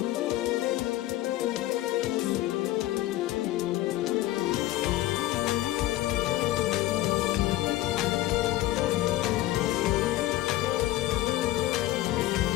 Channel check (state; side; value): quieter; right; 15.9 dB